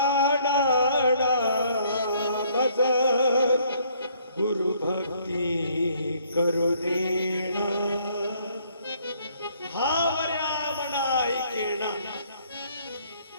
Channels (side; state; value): both; inverted; correlation -0.64